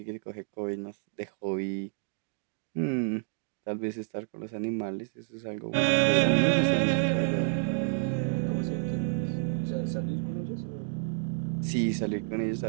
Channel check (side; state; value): left; silent; digital silence